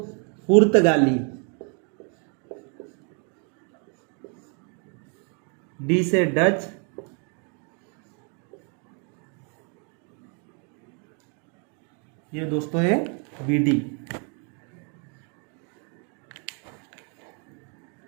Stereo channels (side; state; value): left; quieter; 38.6 dB